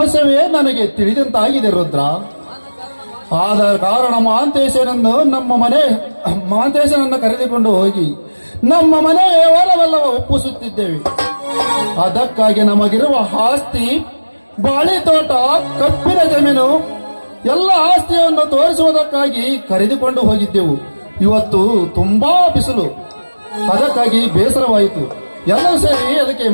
ನನಗೆ ತಿಳಿದಂತಾಗಿದೆ ರುದ್ರ. ಆದ ಕಾರಣ ಮಹಾಂತೇಶನನ್ನು ಕರೆದುಕೊಂಡು ಹೋಗಿ ನಮ್ಮ ಮನೆಯ ವ್ಯವಹಾರವೆಲ್ಲವ ಒಪ್ಪಿಸುತ್ತಿದ್ದೇವೆ. ಅದಕ್ಕಾಗಿ ನಮಗಿರುವ ಆಸ್ತಿ, ಬಾಳೆ ತೋಟ, ಕಬ್ಬಿನ ಜಮೀನು ಎಲ್ಲ ಆಸ್ತಿಯನ್ನು ತೋರಿಸುವುದಕ್ಕಾಗಿ ಕರೆದುಕೊಂಡು ಹೋಗಿದ್ದೆವು. ಇವತ್ತು ತುಂಬಾ ಬಿಸಿಲು, ಅದಕ್ಕಾಗಿ ಬೇಸರವಾಯಿತು. ಎಲ್ಲರೂ ಸೇರಿ ಅದಕ್ಕೆ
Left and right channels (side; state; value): both; inverted; correlation -1.00